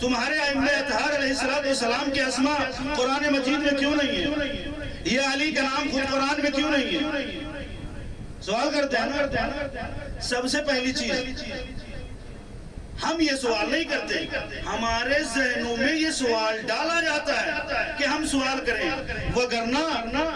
ائمہ اطہار علیہ السلام کے اسماء قرآن مجید میں کیوں نہیں ہے؟ یہ علی کا نام خود قرآن میں کیوں نہیں ہے؟ سوال کرتے ہیں نا. سب سے پہلی چیز، ہم یہ سوال نہیں کرتے، ہمارے ذہنوں میں یہ سوال ڈالا جاتا ہے کہ ہم سوال کریں. وگرنہ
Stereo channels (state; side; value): identical; both; correlation 1.00